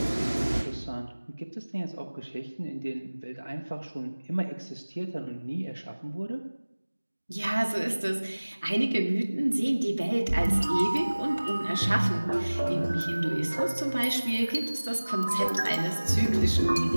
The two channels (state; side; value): inverted; both; correlation -1.00